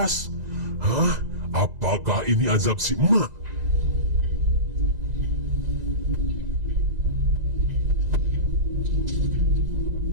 Hah? Apakah ini azab si emak?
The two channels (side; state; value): left; late; 2.0 ms